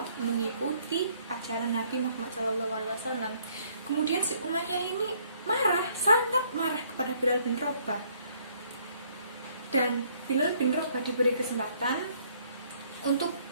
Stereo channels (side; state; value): both; inverted; correlation -0.64